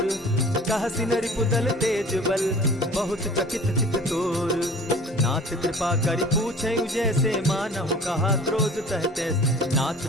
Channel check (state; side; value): normal; both; correlation 0.44